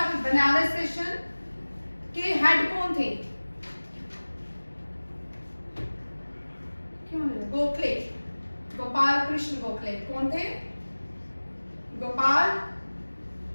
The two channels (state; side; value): inverted; both; correlation -1.00